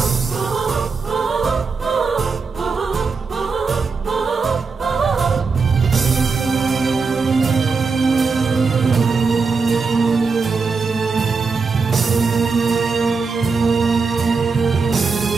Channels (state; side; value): quieter; left; 4.8 dB